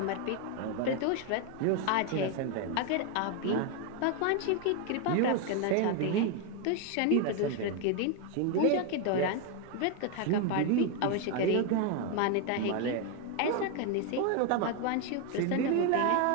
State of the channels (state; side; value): different; both; correlation 0.01